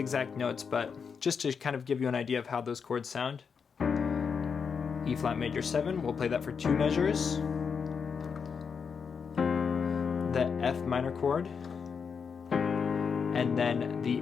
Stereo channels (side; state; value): right; quieter; 6.1 dB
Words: notes, but just to kind of give you an idea of how those chords sound. E flat major 7, we'll play that for 2 measures. The F minor chord, and then the